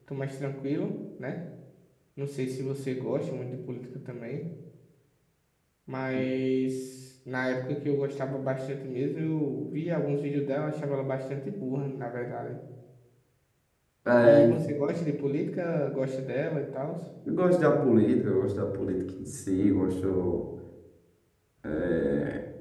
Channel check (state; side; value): identical; both; correlation 1.00